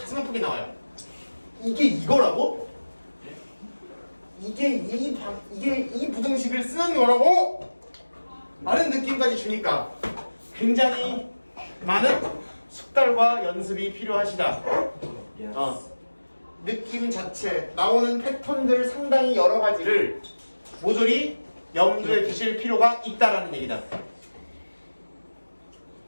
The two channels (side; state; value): both; inverted; correlation -1.00